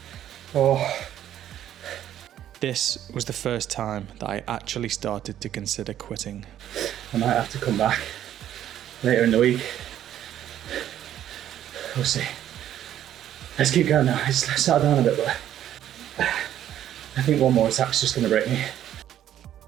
oh. This was the first time that I actually started to consider quitting. I might have to come back later in the week. We'll see. Let's keep going now. It's settled down a bit, but I think one more attack's just going to break me.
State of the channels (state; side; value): quieter; left; 11.3 dB